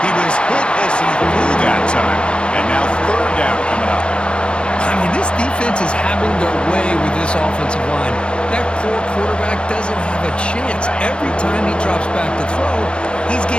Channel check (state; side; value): late; right; 0.055 ms